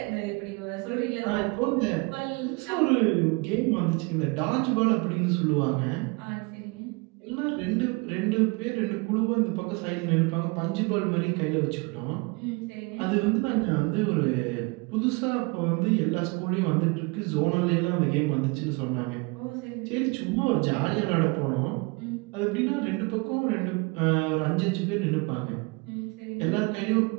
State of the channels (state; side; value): quieter; left; 28.6 dB